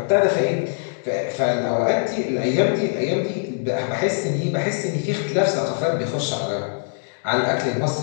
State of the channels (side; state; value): right; silent; digital silence